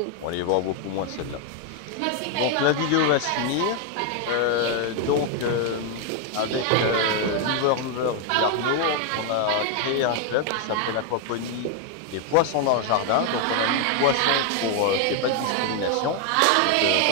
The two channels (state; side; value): different; both; correlation 0.01